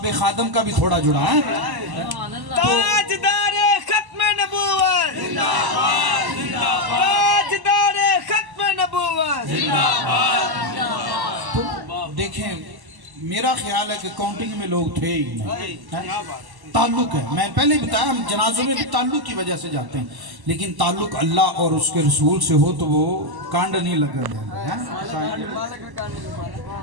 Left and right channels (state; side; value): late; left; 1.1 ms